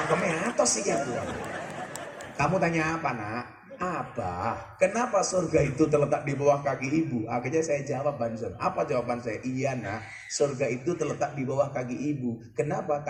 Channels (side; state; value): both; identical; correlation 1.00